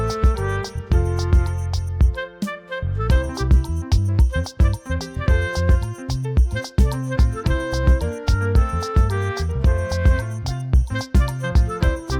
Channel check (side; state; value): both; identical; correlation 1.00